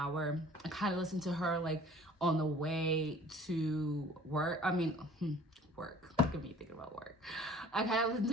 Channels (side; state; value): both; normal; correlation 0.50